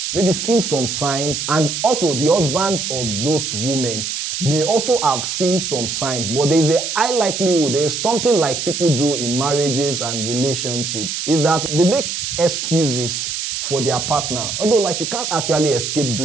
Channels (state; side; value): noise; right; hiss, 3 dB below the sound